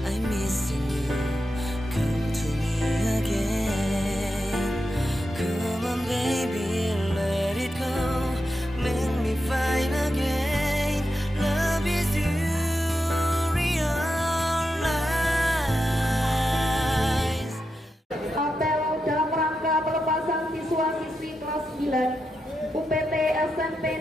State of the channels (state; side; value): normal; both; correlation 0.88